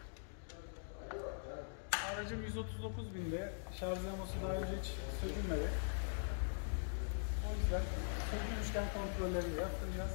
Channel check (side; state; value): right; silent; digital silence